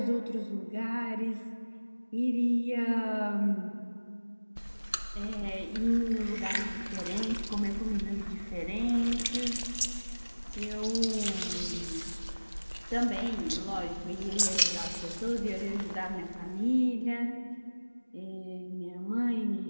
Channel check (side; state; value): both; inverted; correlation -1.00